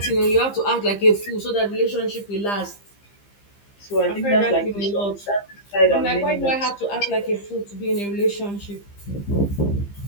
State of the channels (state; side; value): late; right; 15 ms